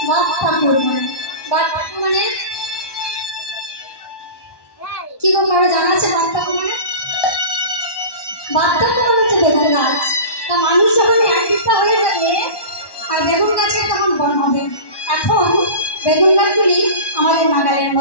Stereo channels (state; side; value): late; right; 1.1 ms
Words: বাপ্তাকুর মানে কি গো কারো জানা আছে বাপ্তাকুর মানে? বাপ্তাকুর হচ্ছে বেগুন গাছ। তা মানুষ যখন এক বিদ্যা হয়ে যাবে আর বেগুন গাছের তখন বন হবে। এখন বেগুন গাছগুলি আমাদের নাগালের